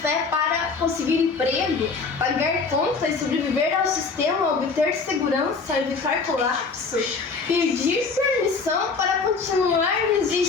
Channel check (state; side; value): quieter; right; 4.6 dB